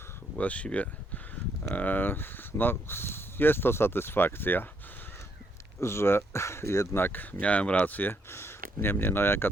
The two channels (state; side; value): normal; both; correlation 0.73